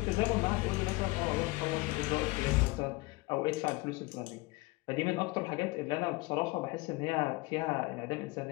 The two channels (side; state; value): right; quieter; 23.3 dB